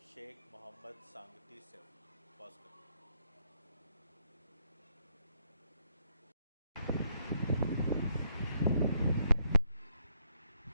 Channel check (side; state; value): both; inverted; correlation -0.73